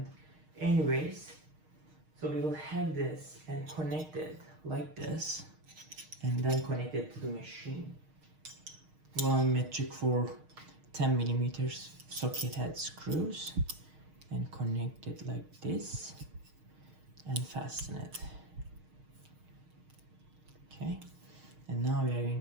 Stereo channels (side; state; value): left; late; 6.5 ms